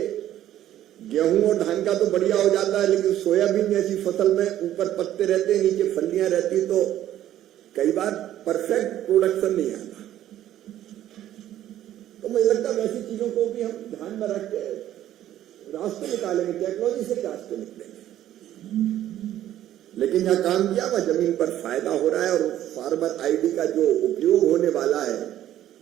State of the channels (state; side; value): quieter; left; 12.4 dB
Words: गेहूं और धान का तो बढ़िया हो जाता है, लेकिन सोयाबीन जैसी फसल में ऊपर पत्ते रहते हैं, नीचे फलियां रहती, तो कई बार परफेक्ट प्रोडक्शन नहीं आता। तो मुझे लगता है वैसी चीजों को भी हम ध्यान में रख के रास्ते निकालेंगे, टेक्नोलॉजी से ही रास्ते निकलेंगे। लेकिन जहां काम किया वह जमीन पर फायदा हो रहा है, और फार्मर आईडी का जो उपयोग होने वाला है